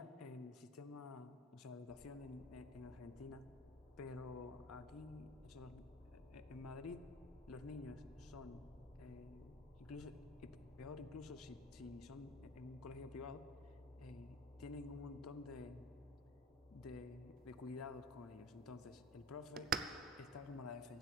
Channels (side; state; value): both; normal; correlation 0.37